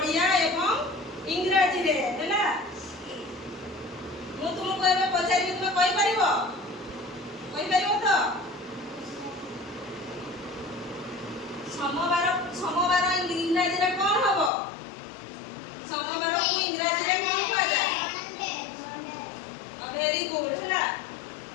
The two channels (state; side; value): drops out; right; at 14.5 s